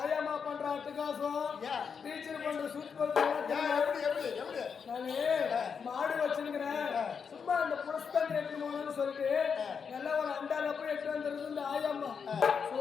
ஆயாமா பண்ற அட்டகாசம், டீச்சர் பண்ற சூப்பர். நானு மாடு வச்சிருக்கிறேன். சும்மா அந்த புரஸ்தான் எடுத்து போகணும்னு சொல்லிட்டு நல்லா ஒரு அண்டால போய் எடுத்து வந்துருது இந்த ஆயாமா.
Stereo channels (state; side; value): quieter; right; 6.3 dB